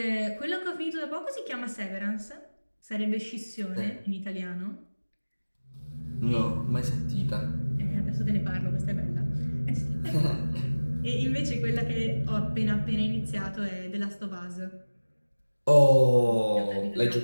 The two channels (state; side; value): inverted; both; correlation -1.00